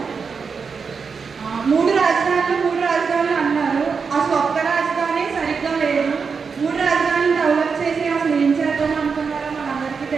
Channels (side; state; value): left; quieter; 5.5 dB